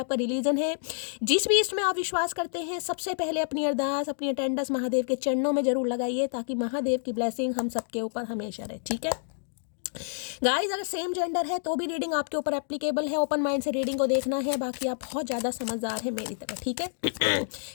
रिलीजन है, जिस भी इसमें आप विश्वास करते हैं, सबसे पहले अपनी अरदास, अपनी अटेंडेंस महादेव के चरणों में जरूर लगाइए, ताकि महादेव की ब्लेसिंग हम सबके ऊपर हमेशा रहे, ठीक है। गाइस अगर सेम जेंडर है तो भी रीडिंग आपके ऊपर एप्लीकेबल है। ओपन माइंड से रीडिंग को देखना है। बाकी आप बहुत ज़्यादा समझदार है मेरी तरह, ठीक है।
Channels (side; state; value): right; silent; digital silence